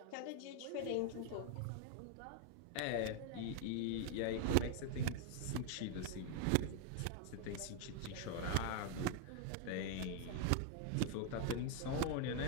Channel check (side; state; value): both; different; correlation 0.00